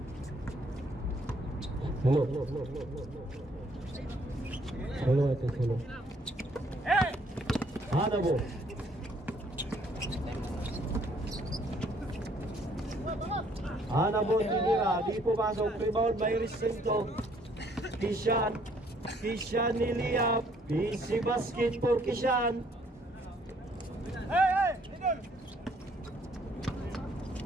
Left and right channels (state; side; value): normal; both; correlation 0.64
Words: Hello. Hanabo. Hanabo tinira, di pumasok, rebound by Recinto. Kishan niliap, busy basket for Kishan.